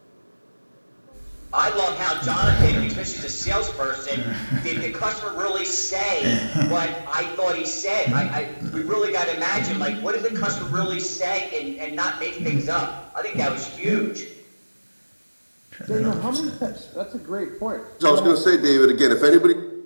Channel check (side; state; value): both; inverted; correlation -1.00